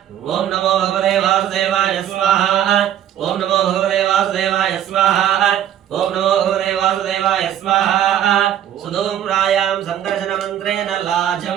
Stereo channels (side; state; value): left; quieter; 10.8 dB